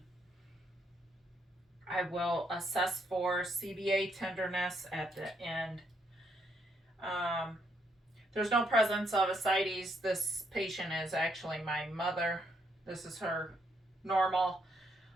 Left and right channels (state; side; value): normal; both; correlation 0.74